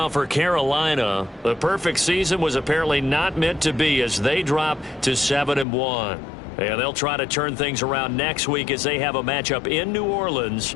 for Carolina, the perfect season was apparently not meant to be as they drop to 7-1. And they'll try to turn things around next week as they have a matchup in New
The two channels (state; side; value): drops out; right; at 5.7 s